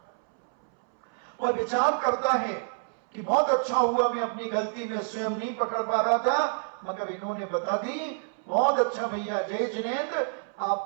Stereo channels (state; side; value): silent; left; 59 dB below the other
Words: और विचार करता है कि बहुत अच्छा हुआ मैं अपनी गलती में स्वयं नहीं पकड़ पा रहा था, मगर इन्होंने बता दी। बहुत अच्छा भैया जय जिनेंद्र,